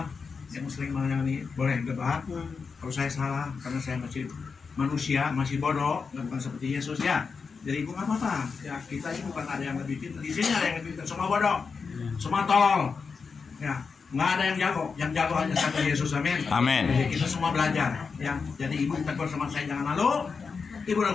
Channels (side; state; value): right; quieter; 5.2 dB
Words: yang sering menyanyi boleh debat. Kalau saya salah karena saya masih manusia, masih bodoh, bukan seperti Yesus ya. Jadi ibu nggak apa-apa. Ya kita ini bukan ada yang lebih pintar. Di sini ada yang lebih pintar. Semua bodoh, semua tolol. Ya, nggak ada yang jago. Yang jago hanya satu Yesus. Amin. Amin. Jadi kita semua belajar. Ya, jadi ibu tegur sama saya jangan malu. Ibu